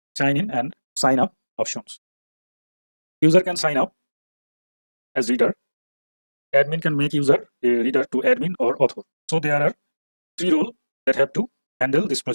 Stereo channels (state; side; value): inverted; both; correlation -1.00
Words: sign in and sign up options. User can sign up as reader. Admin can make user a reader to admin or author. So there are 3 roles that have to handle this